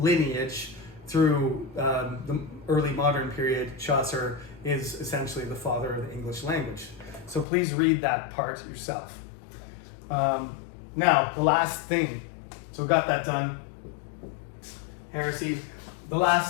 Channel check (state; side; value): drops out; right; at 7.5 s